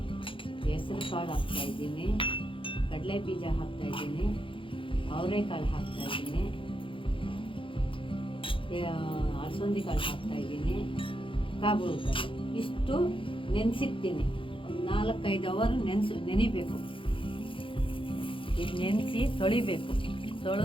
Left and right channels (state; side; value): late; right; 0.25 ms